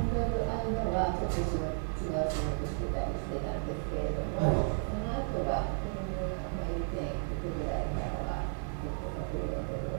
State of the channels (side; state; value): left; silent; 55 dB below the other